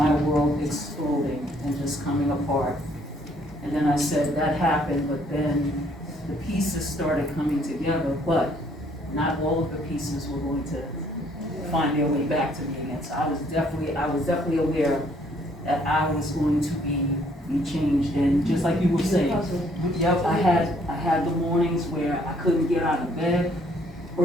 world exploding and just coming apart. And then I said, that happened, but then the pieces started coming together, but not all of the pieces were going to find their way back to me again. So I was definitely aware that I was going to be changed. And just like you were saying, yep, I had the mornings where I couldn't get out of bed.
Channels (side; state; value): both; normal; correlation 0.64